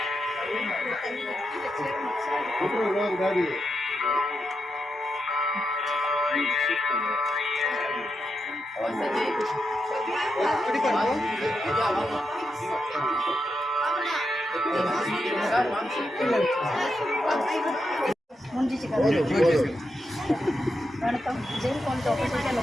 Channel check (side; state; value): both; normal; correlation 0.85